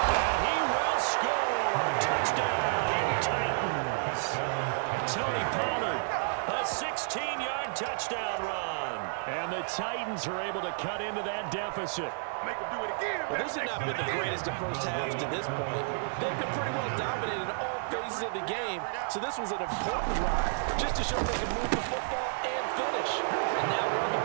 And he will score. Touchdown, Titans. Tony Pollard, a 16-yard touchdown run. And the Titans are able to cut into that deficit. Make him do it again. Well, this has not been the greatest of first halves to this point. They've been pretty well dominated in all phases of the game, so this was an important drive just to show they can move the football and finish. And now we're on the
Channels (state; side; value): silent; left; digital silence